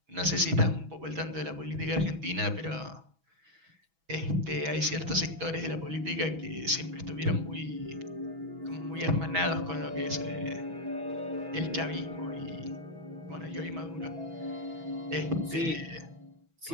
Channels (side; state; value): left; late; 6.1 ms